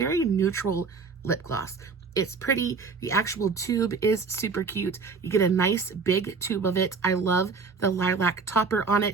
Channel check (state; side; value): quieter; left; 4.9 dB